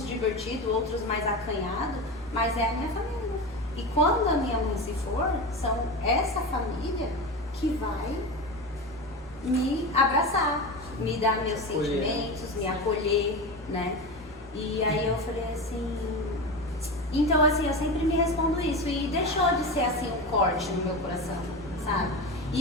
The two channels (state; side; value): normal; both; correlation 0.23